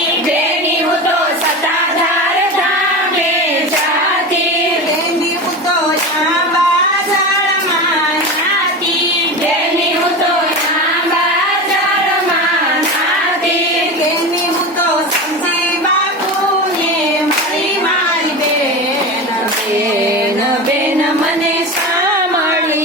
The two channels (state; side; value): normal; both; correlation 0.25